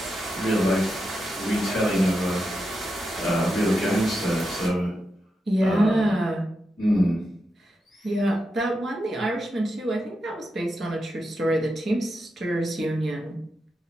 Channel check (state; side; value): normal; both; correlation 0.87